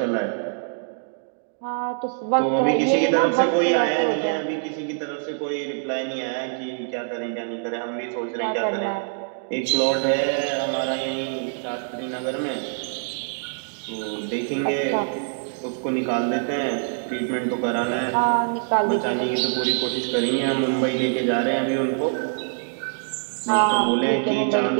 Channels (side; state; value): left; silent; digital silence